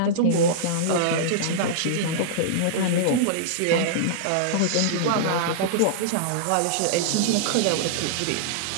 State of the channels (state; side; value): different; both; correlation -0.02